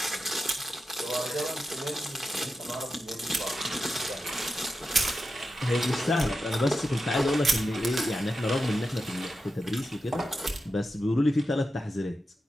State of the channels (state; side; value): normal; both; correlation 0.89